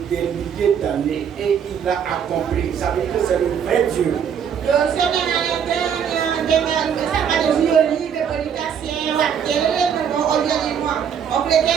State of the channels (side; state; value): left; quieter; 7.9 dB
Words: milliers d'années et il l'a accompli. Ça veut dire que c'est le vrai Dieu.